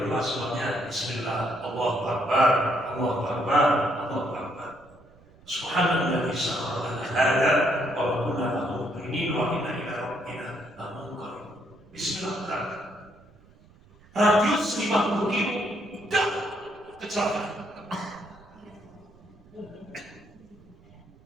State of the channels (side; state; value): right; noise; rumble, 26 dB below the sound